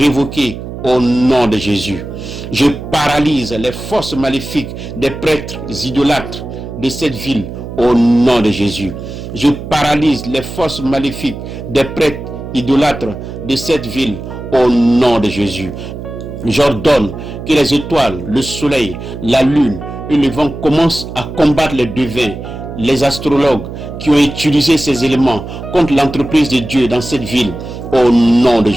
au nom de Jésus. Je paralyse les forces maléfiques des prêtres idolâtres de cette ville au nom de Jésus. Je paralyse les forces maléfiques des prêtres idolâtres de cette ville au nom de Jésus. J'ordonne que les étoiles, le soleil, la lune et le vent commencent à combattre les devins, les astrologues qui ont utilisé ces éléments contre l'entreprise de Dieu dans cette ville au nom de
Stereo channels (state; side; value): noise; right; hum, 10 dB below the sound